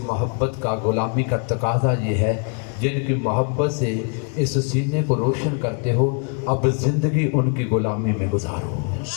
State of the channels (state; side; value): quieter; right; 38.3 dB